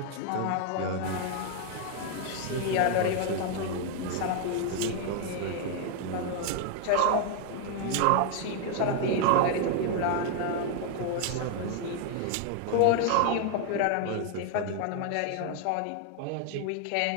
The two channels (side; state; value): both; different; correlation 0.00